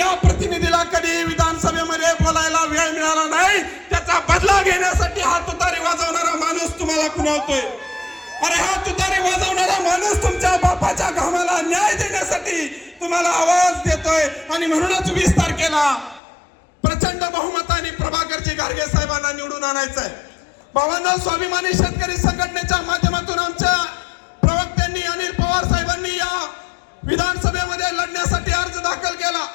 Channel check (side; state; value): right; drops out; at 16.2 s